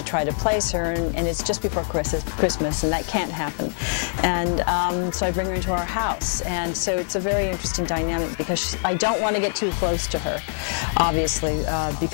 try to place her, and it's just before Christmas, and that can't happen. And so I bring her into our house, and so it's a very interesting dynamic because I don't want to get too close to her, obviously,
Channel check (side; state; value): right; silent; digital silence